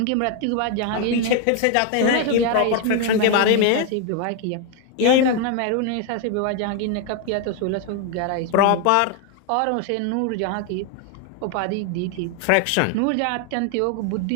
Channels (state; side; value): different; both; correlation 0.01